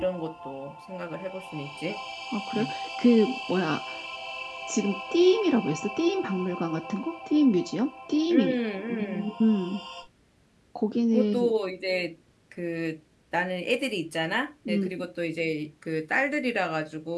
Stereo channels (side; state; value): both; identical; correlation 1.00